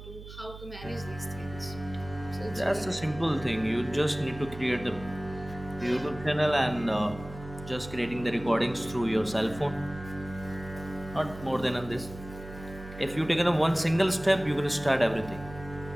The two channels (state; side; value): noise; right; hum, 14 dB below the sound